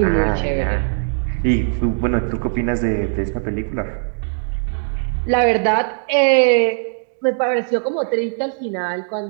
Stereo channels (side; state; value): left; silent; digital silence